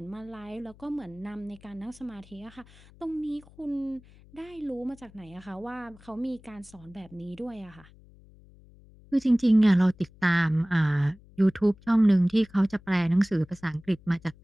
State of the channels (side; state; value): left; noise; hum, 24 dB below the sound